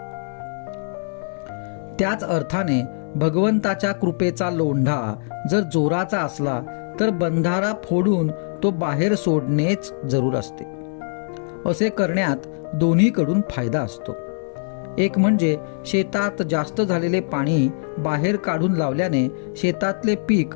त्याच अर्थाने भगवंताच्या कृपेचा लोंढा जर जोराचा असला तर बंधारा फोडून तो बाहेर सोडणेच जरूर असते. असे करण्यात दोन्हीकडून फायदा असतो. एक म्हणजे शेतात जास्त झालेले पाणी बाहेर काढून लावल्याने शेतातले पीक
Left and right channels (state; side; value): silent; right; 64 dB below the other